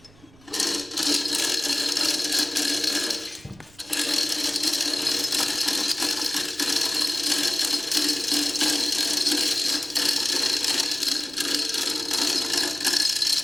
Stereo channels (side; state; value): right; noise; rumble, 26 dB below the sound